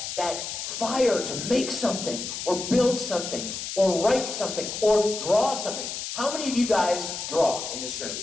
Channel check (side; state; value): left; noise; hiss, 6 dB below the sound